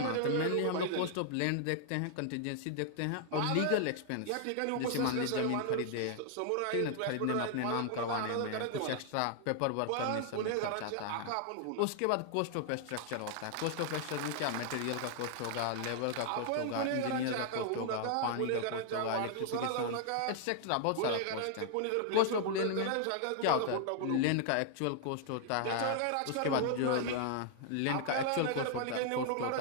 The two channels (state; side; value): different; both; correlation 0.00